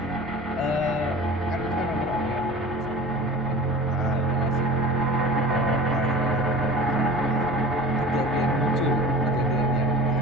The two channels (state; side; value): noise; left; hum, 16 dB below the sound